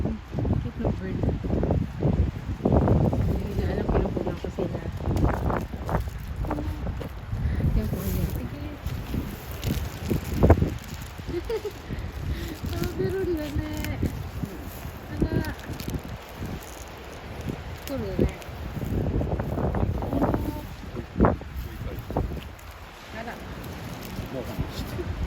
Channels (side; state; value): both; identical; correlation 1.00